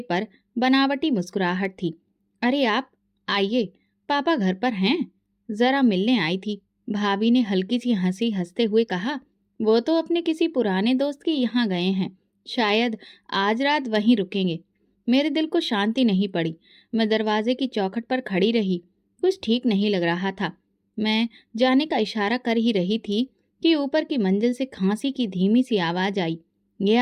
पर बनावटी मुस्कुराहट थी। अरे आप आइए, पापा घर पर हैं, जरा मिलने आई थी। भाभी ने हल्की सी हंसी हंसते हुए कहा, वो तो अपने किसी पुराने दोस्त के यहाँ गए हैं, शायद आज रात वहीं रुकेंगे। मेरे दिल को शांति नहीं पड़ी। मैं दरवाजे की चौखट पर खड़ी रही। कुछ ठीक नहीं लग रहा था। मैं जाने का इशारा कर ही रही थी कि ऊपर की मंजिल से खांसी की धीमी सी आवाज आई।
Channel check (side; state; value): both; identical; correlation 1.00